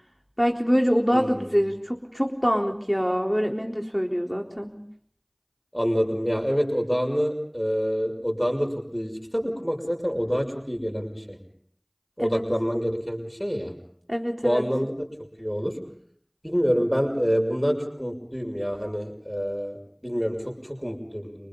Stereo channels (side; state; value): both; identical; correlation 1.00